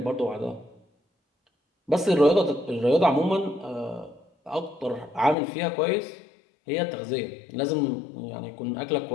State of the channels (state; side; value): drops out; right; at 5.4 s